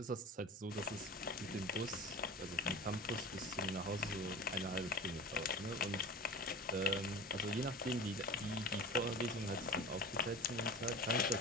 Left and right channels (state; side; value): normal; both; correlation 0.36